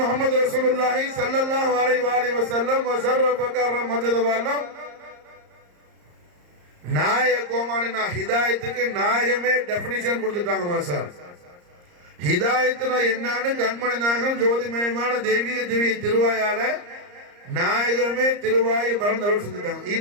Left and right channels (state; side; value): late; left; 34 ms